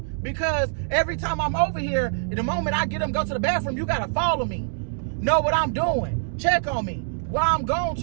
because every time I'm over here, the moment I get them go to the bathroom, you gotta follow me. Know what I'm doing. Check on me. Why I'm gone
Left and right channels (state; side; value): silent; left; digital silence